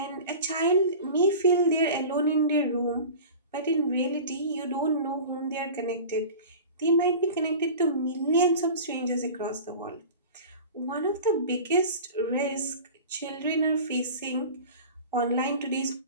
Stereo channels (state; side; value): inverted; both; correlation -0.36